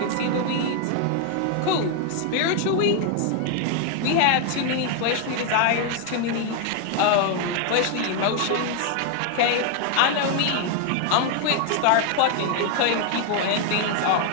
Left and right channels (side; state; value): both; different; correlation 0.00